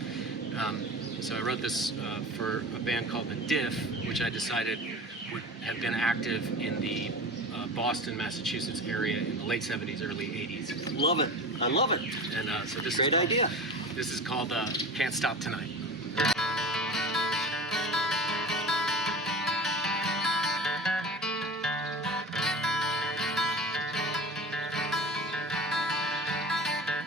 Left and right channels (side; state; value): both; normal; correlation 0.34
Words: So I wrote this for a band called The Diff, which I decided would have been active in the Boston, Massachusetts area in the late 70s, early 80s. Love it. I love it. And so this Great idea. This is called Can't Stop Tonight.